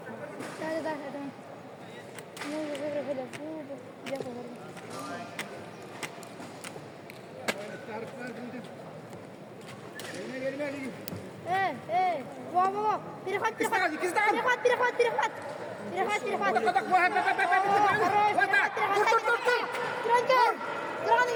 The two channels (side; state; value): both; identical; correlation 1.00